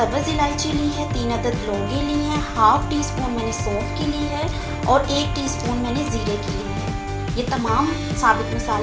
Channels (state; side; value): identical; both; correlation 1.00